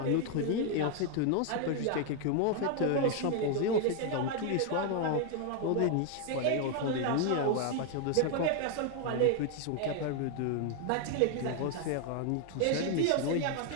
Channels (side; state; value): both; different; correlation 0.01